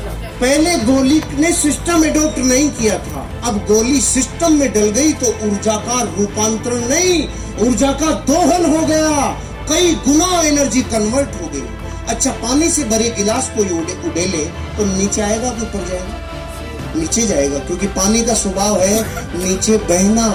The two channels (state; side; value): identical; both; correlation 1.00